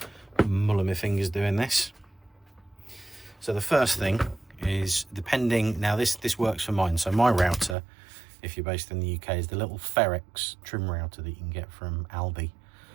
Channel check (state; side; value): drops out; left; at 7.8 s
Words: to muller my fingers doing this. So the first thing is, depending, now this works for mine. So my router, if you're based in the UK, is the little Ferex trim router that you can get from Aldi.